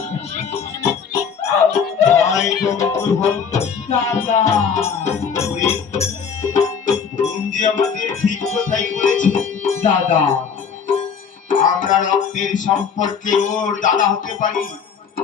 ভাই বন্ধু দাদা ওরে বোন যে আমাদের ঠিক কথাই বলেছে দাদা আমরা রক্তের সম্পর্কে ওর দাদা হতে পারি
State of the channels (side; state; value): right; quieter; 6.6 dB